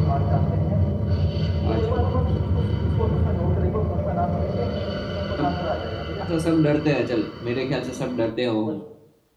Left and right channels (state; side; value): identical; both; correlation 1.00